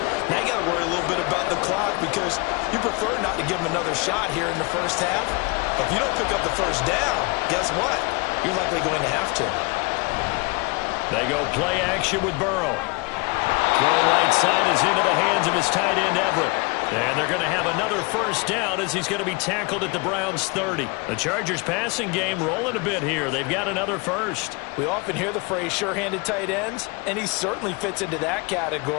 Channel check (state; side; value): quieter; right; 28.1 dB